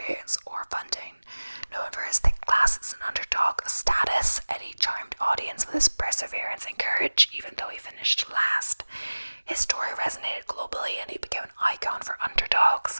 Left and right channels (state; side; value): inverted; both; correlation -1.00